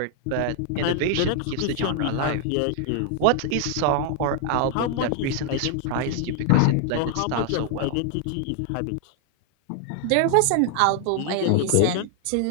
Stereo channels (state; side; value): different; both; correlation 0.00